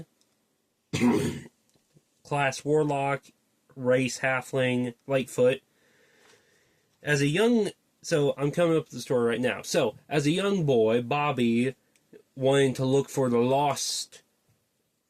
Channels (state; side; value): identical; both; correlation 1.00